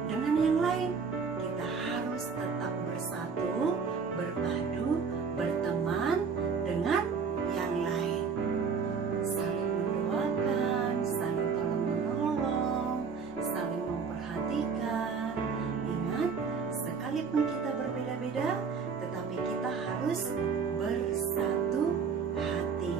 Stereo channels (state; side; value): quieter; left; 5.6 dB